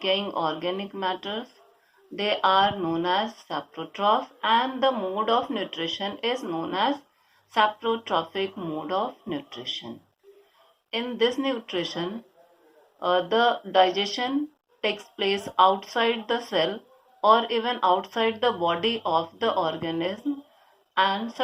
organic matters, they are known as saprotroph, and the mode of nutrition is known as saprotrophic mode of nutrition. In this nutrition, the digestion takes place outside the cell or even outside the body of the organism, and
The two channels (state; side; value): identical; both; correlation 1.00